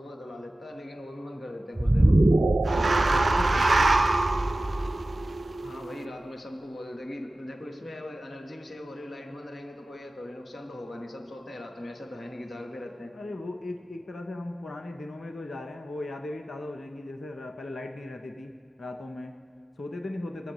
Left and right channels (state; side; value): normal; both; correlation 0.96